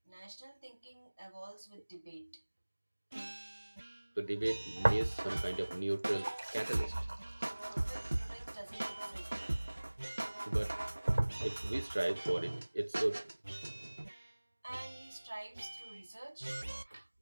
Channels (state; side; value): inverted; both; correlation -1.00